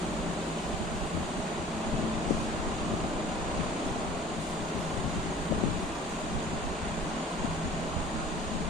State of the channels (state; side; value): normal; both; correlation 0.48